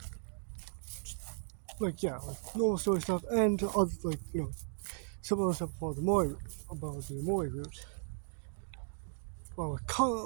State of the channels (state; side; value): silent; left; 54 dB below the other